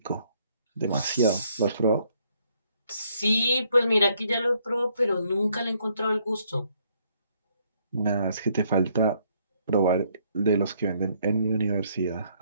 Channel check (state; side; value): inverted; both; correlation -0.69